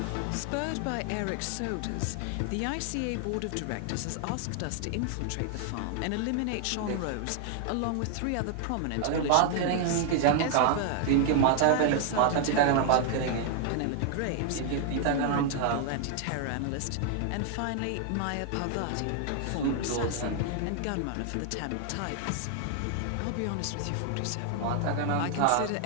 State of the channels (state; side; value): different; both; correlation 0.00